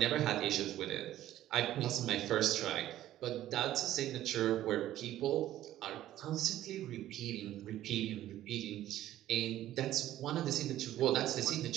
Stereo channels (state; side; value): quieter; left; 13.4 dB